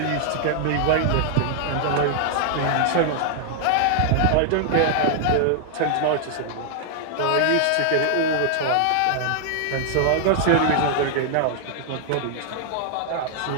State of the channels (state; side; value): different; both; correlation 0.00